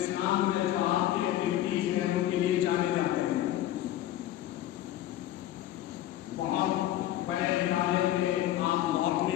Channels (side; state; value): right; quieter; 13.2 dB